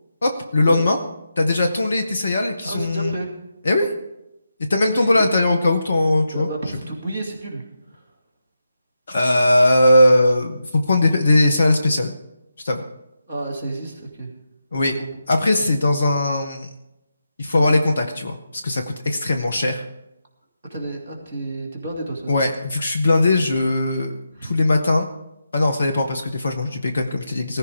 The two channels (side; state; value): both; inverted; correlation -0.88